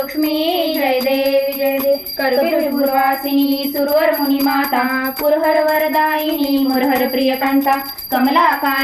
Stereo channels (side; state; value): both; identical; correlation 1.00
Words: जय देवी जय देवी कर्पूरवासिनी सुरवर मुनी माता पुरहर वरदायिनी मुरहर प्रियकांता